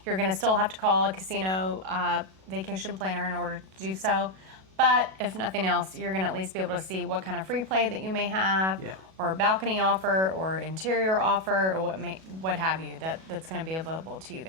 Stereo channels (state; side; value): late; left; 37 ms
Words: You're going to still have to call a casino vacation planner in order to do so. But if nothing else, you're going to at least be able to see what kind of free play that you may have, or a balcony offer, or interior offer, or what have you that's going to be available to you